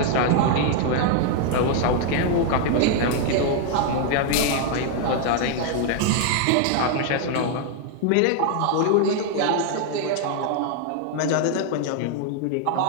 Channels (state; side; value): different; both; correlation 0.00